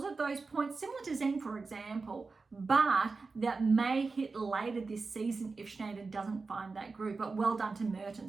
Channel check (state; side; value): quieter; left; 4.2 dB